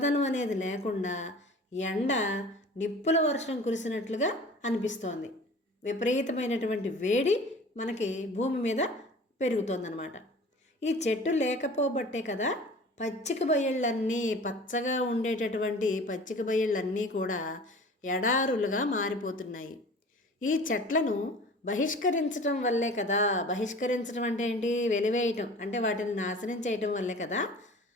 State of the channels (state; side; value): normal; both; correlation 0.43